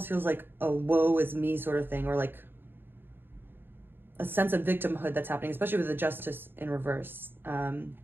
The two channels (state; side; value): late; left; 0.10 ms